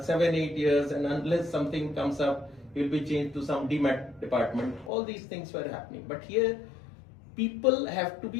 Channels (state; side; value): drops out; right; at 4.9 s